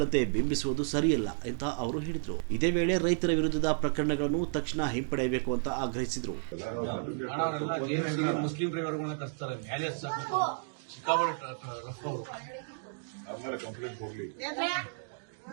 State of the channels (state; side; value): silent; left; digital silence